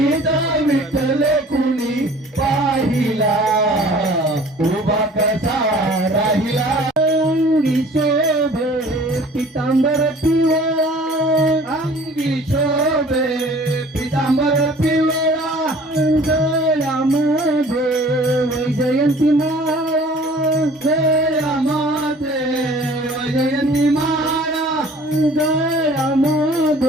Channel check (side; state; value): both; normal; correlation 0.49